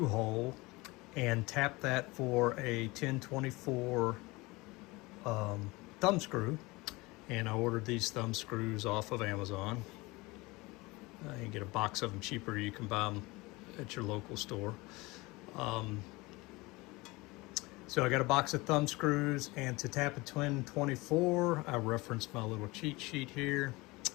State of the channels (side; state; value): right; quieter; 22.9 dB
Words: hole and tap that for a 1024 thumb screw. And I ordered these thumb screws off of Amazon. You can get a box of them cheaper. You can buy them at your local store. So I got a box of thumb screws, and to tap a 1024, I referenced my little cheat sheet here.